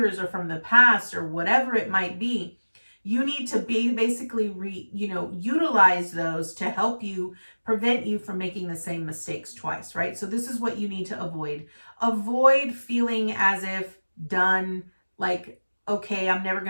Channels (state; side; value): inverted; both; correlation -1.00